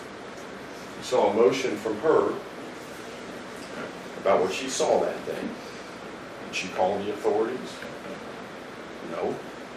You saw emotion from her about what she saw that day. Did she call the authorities? No.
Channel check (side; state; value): both; identical; correlation 1.00